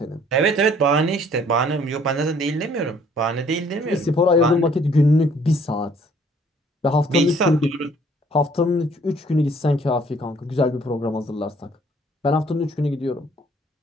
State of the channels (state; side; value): normal; both; correlation 0.60